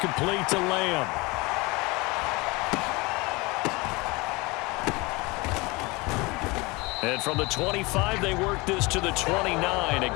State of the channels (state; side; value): quieter; right; 24.8 dB